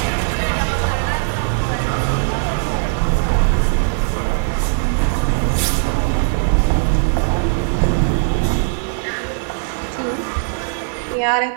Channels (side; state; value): left; silent; digital silence